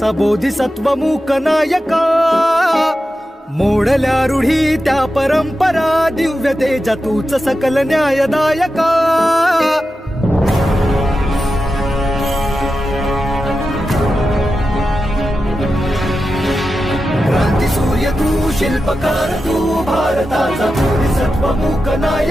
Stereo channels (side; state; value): both; normal; correlation 0.91